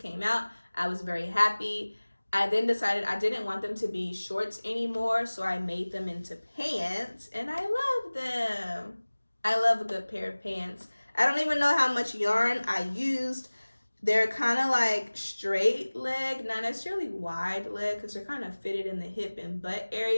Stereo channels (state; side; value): inverted; both; correlation -1.00